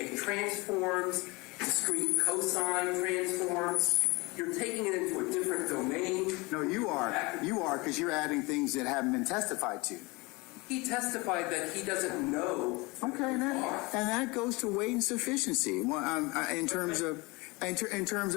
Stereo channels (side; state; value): right; quieter; 25.0 dB